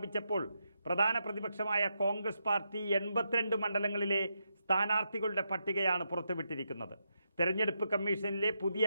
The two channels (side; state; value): both; inverted; correlation -0.83